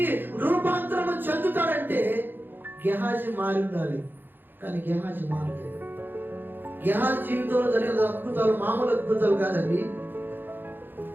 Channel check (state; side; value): late; left; 0.095 ms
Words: రూపాంతరము చెందుతాడంటే గెహాజీ మారి ఉండాలి. కానీ గెహాజీ మారలేదు. గెహాజీ జీవితంలో జరిగిన అద్భుతాలు మామూలు అద్భుతాలు కాదండి,